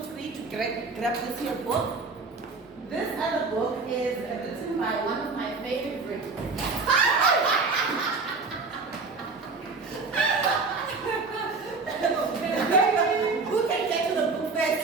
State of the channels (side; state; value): left; quieter; 4.1 dB